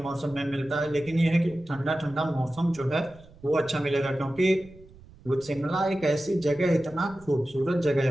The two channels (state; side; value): noise; right; rumble, 23 dB below the sound